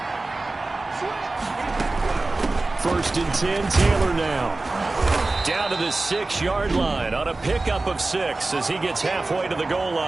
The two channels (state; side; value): quieter; left; 3.2 dB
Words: First and 10, Taylor now. Down to the 6-yard line on a pickup of 6 as he gets halfway to the goal